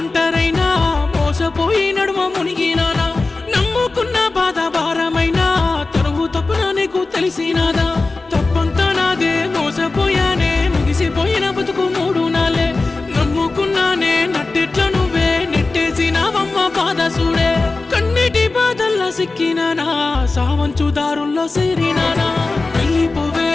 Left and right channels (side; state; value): right; quieter; 3.5 dB